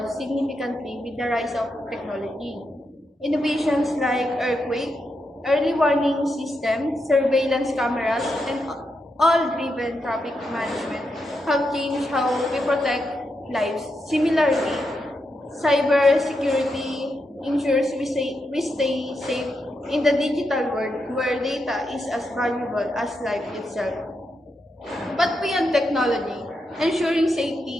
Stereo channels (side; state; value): both; normal; correlation 0.84